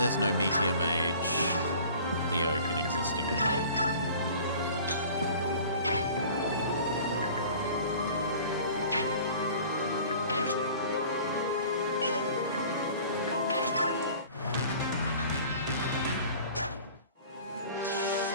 no Meteor Mage, Leo can exist again.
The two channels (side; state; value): both; inverted; correlation -0.46